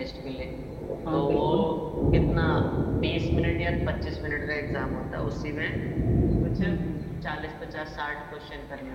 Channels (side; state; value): both; identical; correlation 1.00